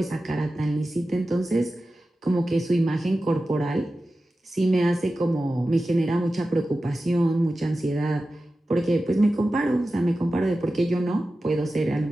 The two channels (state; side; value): normal; both; correlation 0.94